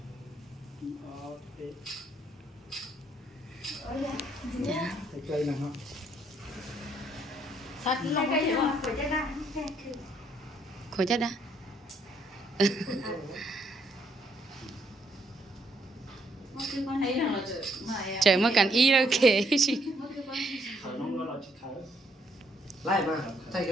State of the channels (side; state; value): both; normal; correlation 0.70